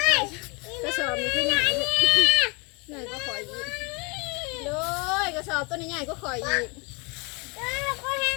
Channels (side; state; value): right; quieter; 30.0 dB